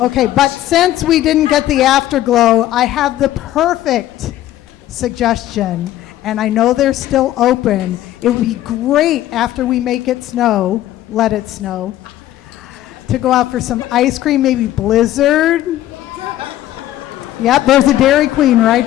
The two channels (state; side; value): quieter; right; 13.7 dB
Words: okay, but since we didn't get the afterglow, I have the perfect suggestion, and I know they're still open. It would be great after we make it snow, let it snow, to go out for some ice cream, maybe Blizzard. Yep, there's a Dairy Queen